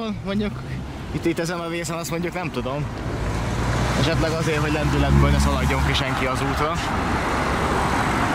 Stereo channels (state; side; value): identical; both; correlation 1.00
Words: mondjuk itt ezen a vészen, azt mondjuk nem tudom. Esetleg azért, hogy lendületből ne szaladjon ki senki az útra.